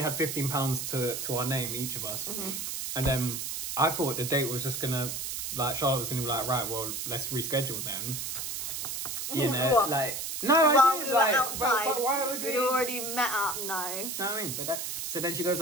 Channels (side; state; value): right; noise; hiss, 4 dB below the sound